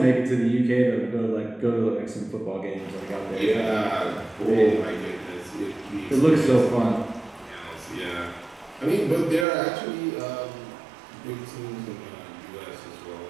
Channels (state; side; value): drops out; left; at 9.5 s